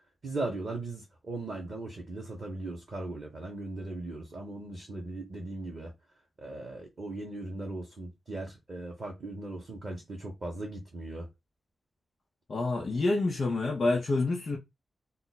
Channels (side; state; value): both; normal; correlation 0.88